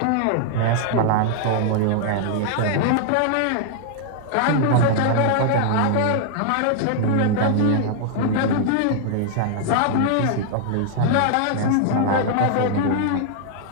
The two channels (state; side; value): different; both; correlation 0.00